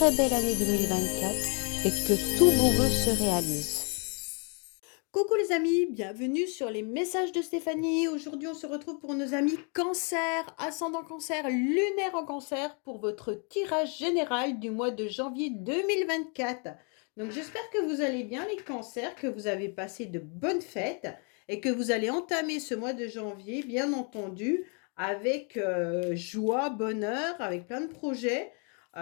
belle année 2024 et que tous vos vœux se réalisent. Coucou les amis, bienvenue sur les messages de Stéphanie. Aujourd'hui, on se retrouve pour nos amis cancer, ascendant cancer, lunaire en cancer pour votre tirage général du mois de janvier 2024. Donc j'espère que vous allez bien les cancers, que vous avez passé de bonnes fêtes et que vous allez entamer ce mois de janvier, bien entendu, avec joie, bonheur, avec plein de projets.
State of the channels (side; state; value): right; quieter; 38.3 dB